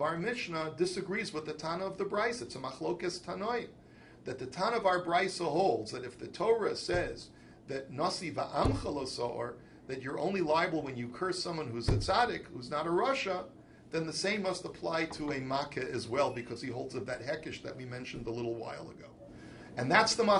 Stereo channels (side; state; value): both; identical; correlation 1.00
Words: our Mishnah disagrees with the Tana of the Brisa. It's a machlokes tanoim. That the Tana of our Brisa holds that if the Torah says that nasi va'amcha lo so'or, that you're only liable when you curse someone who's a tzaddik, who's not a Rasha, then the same must apply to a makeh as well, because he holds of that hekish that we mentioned a little while ago. And that's the